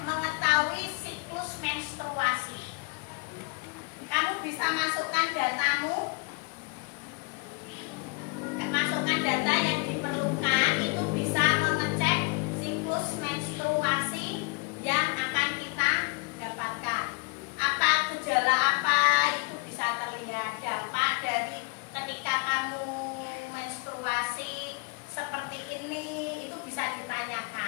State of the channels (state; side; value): quieter; right; 30.3 dB